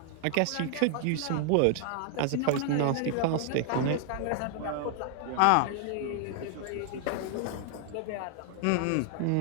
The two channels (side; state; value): both; different; correlation 0.00